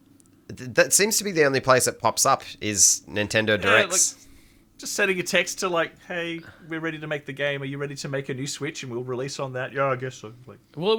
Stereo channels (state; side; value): identical; both; correlation 1.00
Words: That seems to be the only place it pops up is Nintendo Directs. just sending a text to like, hey, we're ready to make the game. Are you ready to make a new Switch and we'll release on that? Yeah, I guess so. Like, Well, it